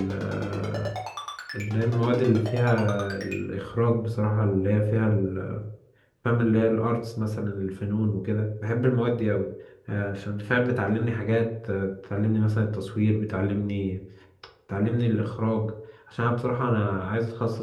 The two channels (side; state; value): both; identical; correlation 1.00